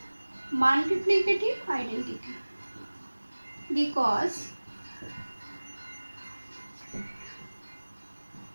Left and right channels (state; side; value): inverted; both; correlation -1.00